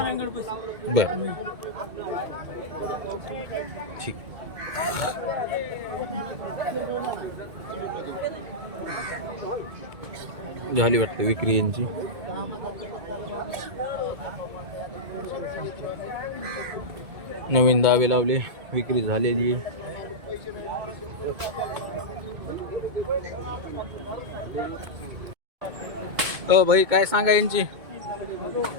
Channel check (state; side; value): late; left; 2.2 ms